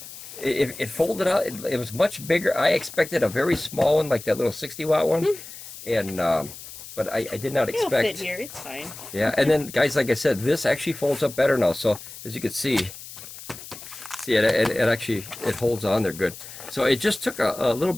it folded out. It was much bigger. I expected a very small one, like that little 60-watt one, and but I did not expect. It'll fit here. It's fine. Yeah, and then guys, like I said, this actually folds up better now. So as you can see. See, it actually holds on there good. So it just took a little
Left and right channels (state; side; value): noise; left; hiss, 14 dB below the sound